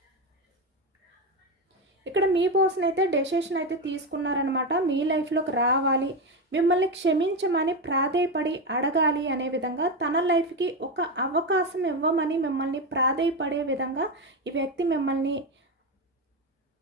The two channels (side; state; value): both; normal; correlation 0.13